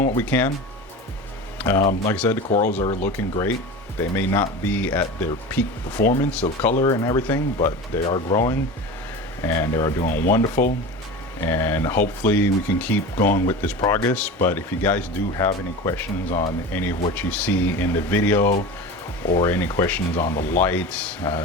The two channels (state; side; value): normal; both; correlation 0.31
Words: what we can. Like I said, the corals are looking great. They may not be at their peak performance of color and everything, but they are growing and they are doing wonderful. And hopefully we can keep going with this progress. But if you guys do have any questions on any of what you see in the video, or any questions on the lights,